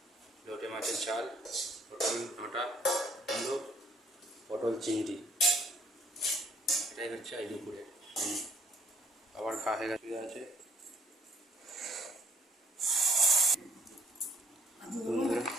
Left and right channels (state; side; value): normal; both; correlation 0.63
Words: লোটে মাছের ঝাল, পটল ডাঁটা কুমড়ো পটল চিংড়ি, এটাই হচ্ছে এই দুপুরের। আবার খাওয়া হয়ে আছে বন্ধুরা।